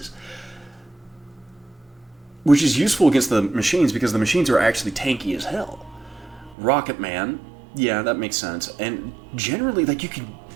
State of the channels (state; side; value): drops out; left; at 6.6 s